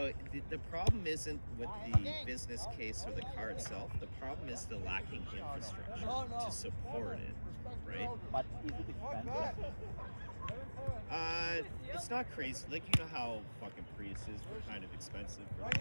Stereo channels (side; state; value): both; inverted; correlation -1.00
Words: the problem isn't with the business case or the car itself. The problem is the lacking infrastructure to support it, right? But is it expensive? It's not crazy. Like, you know how fucking Priuses were kind of expensive for the